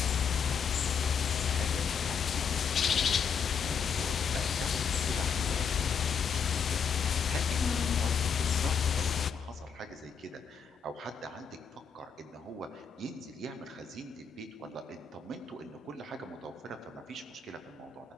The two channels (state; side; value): quieter; right; 6.4 dB